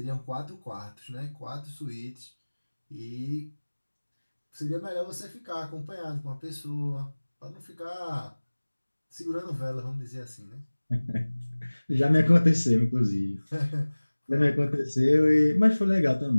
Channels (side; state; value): both; inverted; correlation -1.00